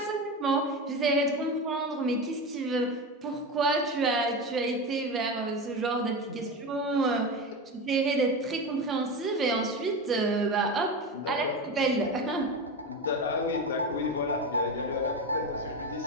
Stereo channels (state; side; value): normal; both; correlation 0.21